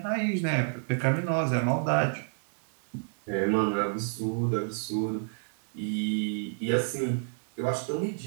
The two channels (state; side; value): silent; left; digital silence